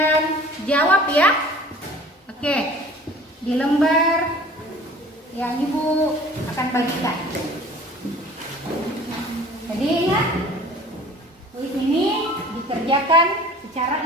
jawab ya. Oke, di lembar yang Ibu akan bagikan. Jadi ingat, kuis ini dikerjakan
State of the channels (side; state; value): both; normal; correlation 0.47